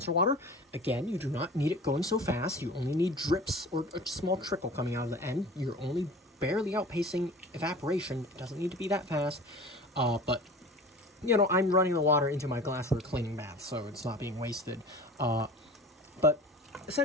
water. Again, you do not need it going so fast. You only need drips or a small trickle coming out of the end. You're only barely outpacing evaporation. It doesn't need to be that fast, but I'm running the water into my glassware cleaning bath, so it's not being wasted. But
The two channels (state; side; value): normal; both; correlation 0.39